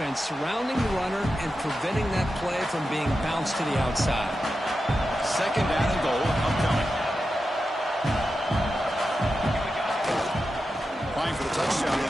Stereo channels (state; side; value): normal; both; correlation 0.90